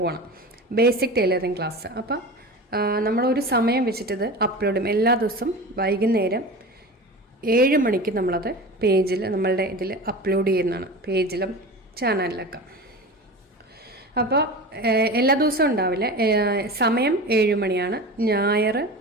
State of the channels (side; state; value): both; normal; correlation 0.31